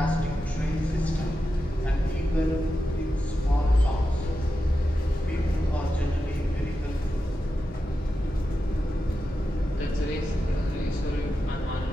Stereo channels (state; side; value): normal; both; correlation 0.90